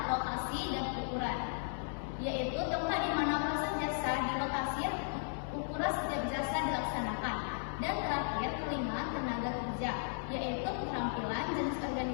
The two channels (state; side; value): silent; right; digital silence